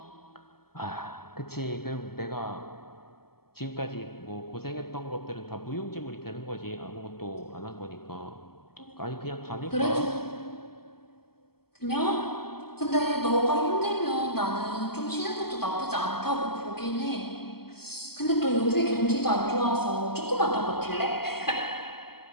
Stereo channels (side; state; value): right; late; 0.95 ms